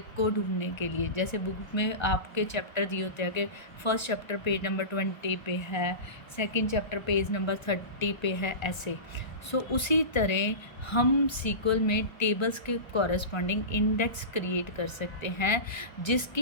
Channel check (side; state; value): right; late; 1.3 ms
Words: को ढूंढने के लिए। जैसे बुक में आपके चैप्टर दिए होते हैं कि फर्स्ट चैप्टर पेज नंबर 20 पे है, सेकंड चैप्टर पेज नंबर 30 पे है, ऐसे। उसी तरह हम सीक्वल में टेबल्स के कॉरस्पॉन्डिंग इंडेक्स क्रिएट कर सकते हैं,